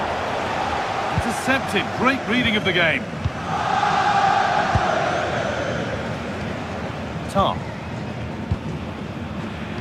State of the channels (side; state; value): both; identical; correlation 1.00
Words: intercepted. Great reading of the game. Tar.